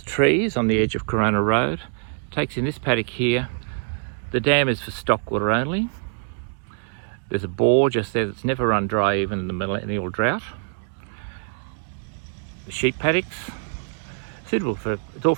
trees on the edge of Corowa Road. Takes in this paddock here. The dam is for stock water only. There's a bore just there that's never run dry even in the millennial drought. The sheep paddocks, suitable for, it's all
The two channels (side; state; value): left; silent; digital silence